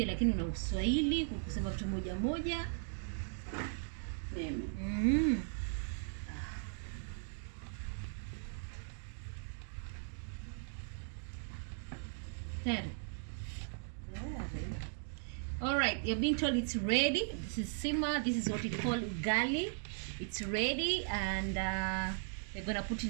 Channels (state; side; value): silent; left; digital silence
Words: lakini una Uswahili kusema vitu moja. Mimi. Tayari. All right, you're being told it's ready. This is simmer. This is what we call ugali. It's ready, and we're gonna put